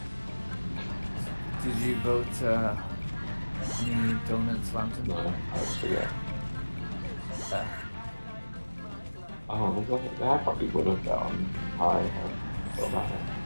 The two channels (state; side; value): inverted; both; correlation -1.00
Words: Did you vote any donuts lantern? No, I just forget. Oh, I probably would have gone high about it.